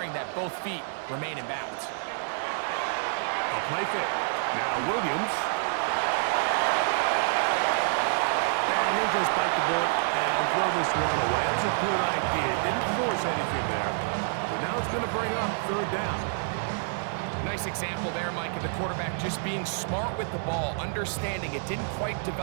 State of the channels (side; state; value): left; silent; digital silence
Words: that both feet remain in bounds. A play fake. Now Williams. And he'll just bite the bullet and throw this one away. That was a good idea. Didn't force anything there. But now it's going to bring up 3rd down. Nice example there, Mike, of the quarterback just being smart with the ball, understanding it didn't quite